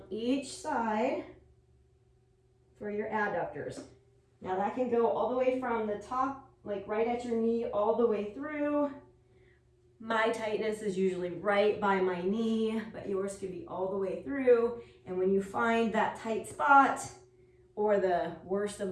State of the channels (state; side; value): identical; both; correlation 1.00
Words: each side for your adductors. Now that can go all the way from the top, like right at your knee, all the way through. My tightness is usually right by my knee, but yours could be all the way through. And when you find that tight spot, or the worst of